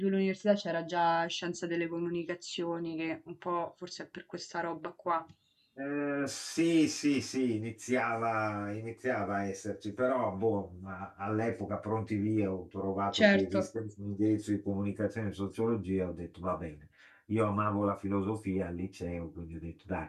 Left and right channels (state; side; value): identical; both; correlation 1.00